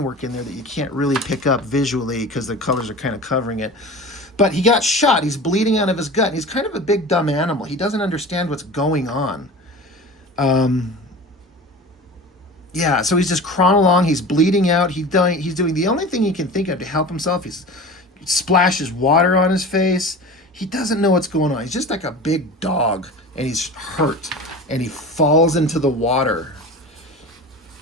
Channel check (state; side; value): normal; both; correlation 0.35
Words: work in there that you can't really pick up visually because the colors are kind of covering it. But he got shot. He's bleeding out of his gut. And he's kind of a big, dumb animal. He doesn't understand what's going on. Yeah, so he's just crawling along. He's bleeding out. He's doing the only thing he can think of to help himself. He splashes water on his face. he doesn't know what's going on. He's just like a big dog, and he's hurt, and he falls into the water.